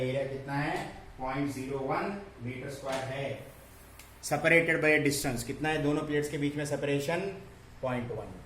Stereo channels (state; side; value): identical; both; correlation 1.00